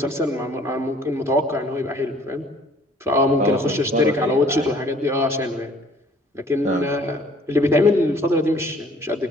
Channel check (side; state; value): both; normal; correlation 0.56